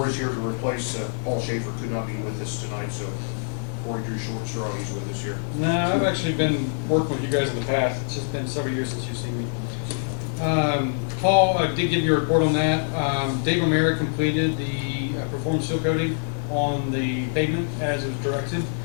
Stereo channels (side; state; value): right; silent; digital silence